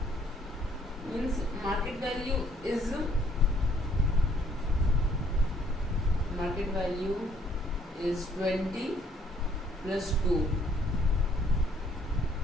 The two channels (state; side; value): normal; both; correlation 0.65